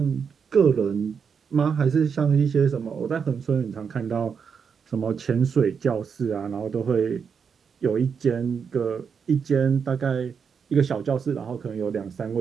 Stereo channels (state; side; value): quieter; left; 6.4 dB